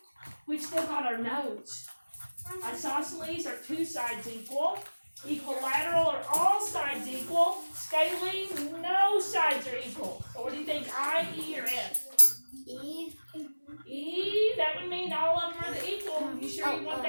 we've still got our notes. Isosceles are 2 sides equal. Equilateral are all sides equal. Scalene, no sides are equal. So what do you think, I, E, or F? E. E, that would mean all of them are equal. You sure you want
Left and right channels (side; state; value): both; inverted; correlation -1.00